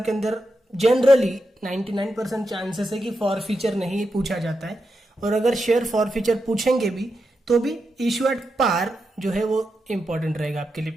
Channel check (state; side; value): normal; both; correlation 0.87